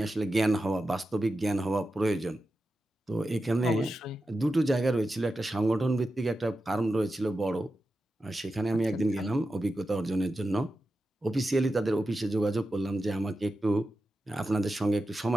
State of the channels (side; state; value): both; normal; correlation 0.91